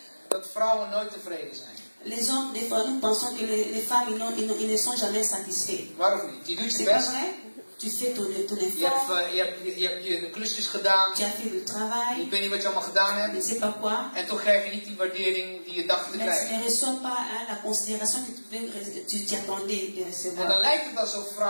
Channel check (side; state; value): both; inverted; correlation -1.00